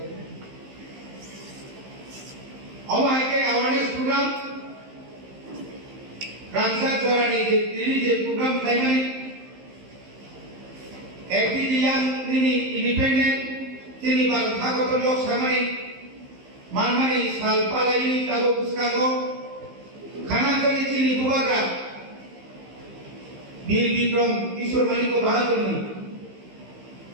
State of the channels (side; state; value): left; late; 15 ms